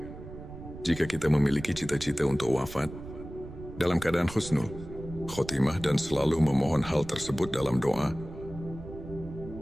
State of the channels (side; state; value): right; noise; rumble, 13 dB below the sound